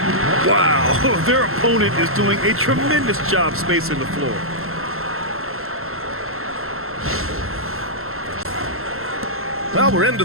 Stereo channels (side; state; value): left; late; 0.62 ms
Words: Wow, their opponent is doing a tremendous job spacing the floor. Well, we're into